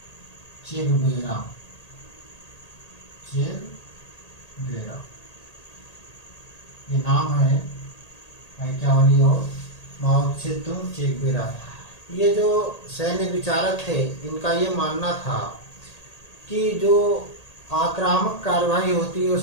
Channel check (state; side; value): late; right; 1.8 ms